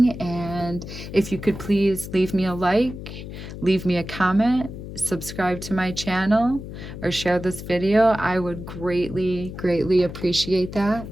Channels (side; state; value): left; noise; hum, 10 dB below the sound